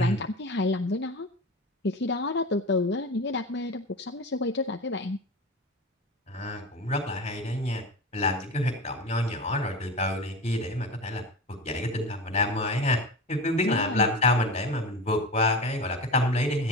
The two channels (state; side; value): normal; both; correlation 0.28